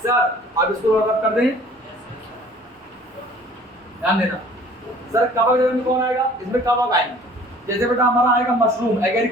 अब इसको रब कर दें, ध्यान देना। सर कवक जगत में कौन आएगा? इसमें कवक आएंगे। जैसे बेटा हमारा आएगा मशरूम,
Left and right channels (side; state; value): both; normal; correlation 0.51